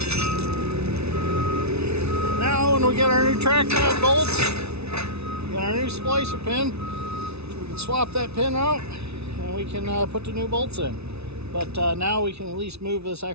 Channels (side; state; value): left; late; 0.80 ms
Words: Now when we get our new track pad bolts, get our new splicer pin, we can swap that pin out and we can put the new bolts in. But now we can at least move this